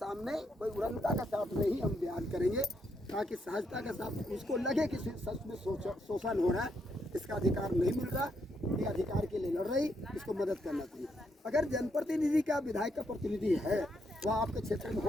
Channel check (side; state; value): both; normal; correlation 0.77